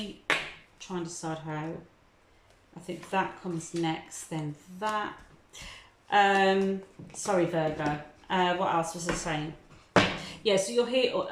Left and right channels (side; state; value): both; identical; correlation 1.00